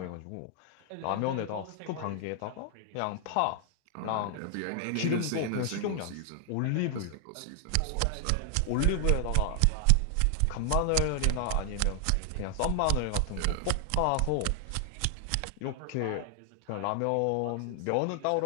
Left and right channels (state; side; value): different; both; correlation 0.00